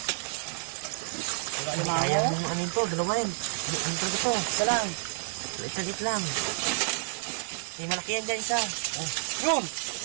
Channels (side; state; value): left; silent; digital silence